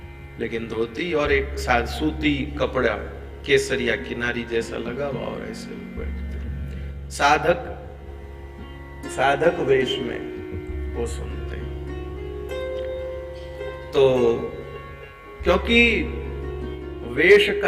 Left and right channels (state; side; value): identical; both; correlation 1.00